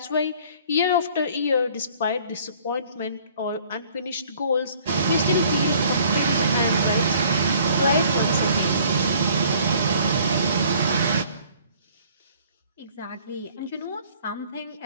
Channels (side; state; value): both; inverted; correlation -0.56